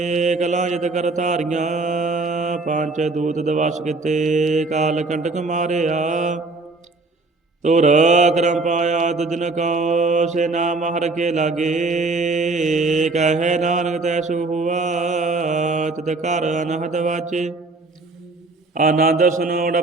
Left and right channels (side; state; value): left; quieter; 3.4 dB